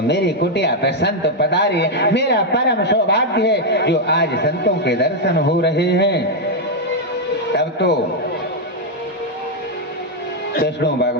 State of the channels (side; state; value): both; normal; correlation 0.00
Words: मेरी कुटिया पे संत पधारी है। मेरा परम सौभाग्य है जो आज संतों के दर्शन हो रहे हैं। तब तो कृष्ण